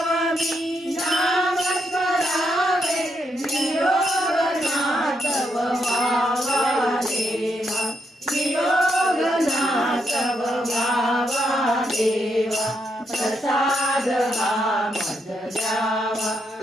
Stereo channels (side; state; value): both; normal; correlation 0.79